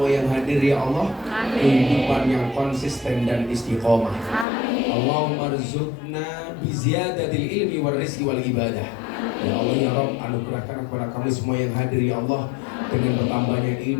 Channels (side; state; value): right; drops out; at 4.5 s